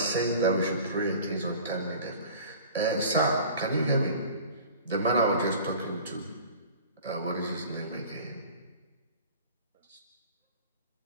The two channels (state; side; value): inverted; both; correlation -0.42